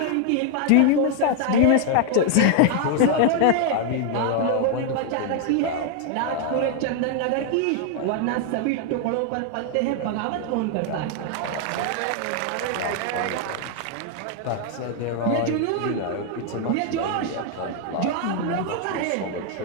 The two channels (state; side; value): different; both; correlation 0.00